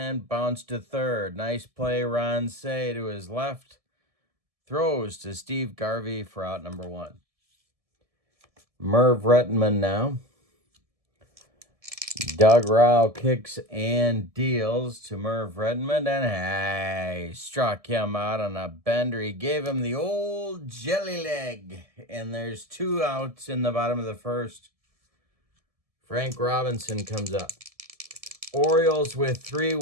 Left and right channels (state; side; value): late; left; 1.7 ms